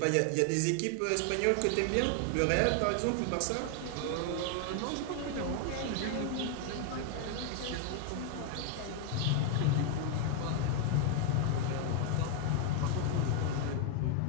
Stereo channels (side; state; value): both; different; correlation 0.00